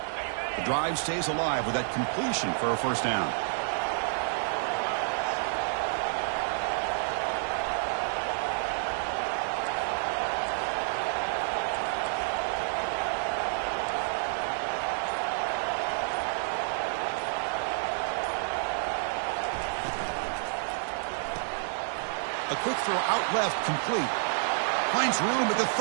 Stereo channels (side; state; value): left; silent; digital silence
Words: The drive stays alive with that completion for a first down. A quick throw out left, complete. Finds room at the